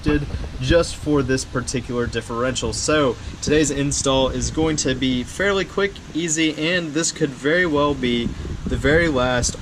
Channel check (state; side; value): identical; both; correlation 1.00